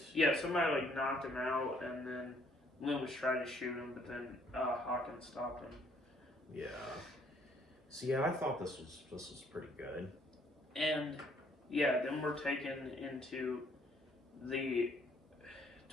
Yeah, somebody like knocked him out, and then Loomis tried to shoot him, but then Hawkins stopped him. Yeah. So yeah, I thought this was pretty good. And yeah, then we're taken into the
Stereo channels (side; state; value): both; normal; correlation 0.64